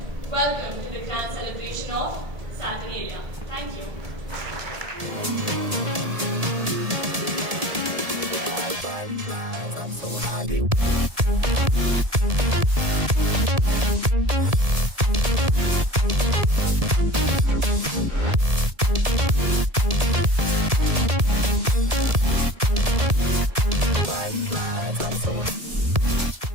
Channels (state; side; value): late; left; 1.7 ms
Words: welcome to the grand celebration of Saturnalia. Thank you.